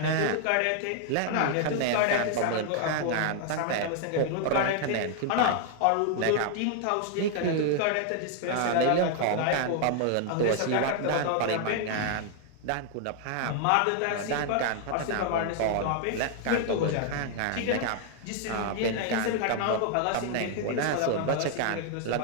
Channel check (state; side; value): different; both; correlation 0.00